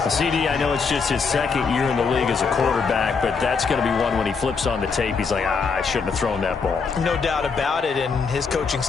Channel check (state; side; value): quieter; right; 5.2 dB